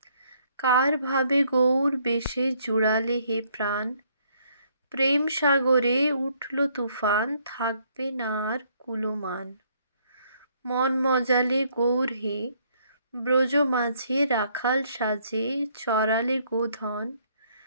কার ভাবে গৌর বেশে জুড়ালে হে প্রাণ, প্রেম সাগরে উঠল তুফান, থাকবে না আর কুলমান। মন মজালে গৌর হে, ব্রজ মাঝে রাখাল সাজে, চরালে গোধন,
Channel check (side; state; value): both; inverted; correlation -0.68